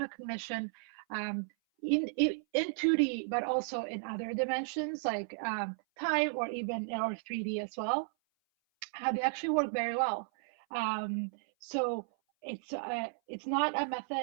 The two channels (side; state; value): left; silent; 55 dB below the other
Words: in 2D, but also in other dimensions like time or even or 3D as well. How they actually work very well. So it's not a